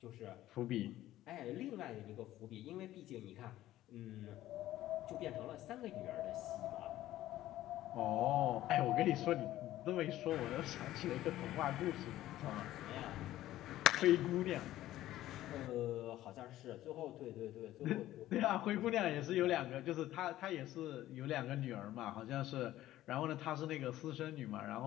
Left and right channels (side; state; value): right; quieter; 14.4 dB